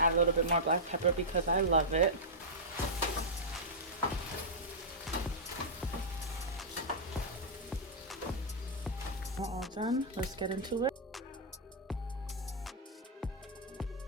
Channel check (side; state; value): both; normal; correlation -0.11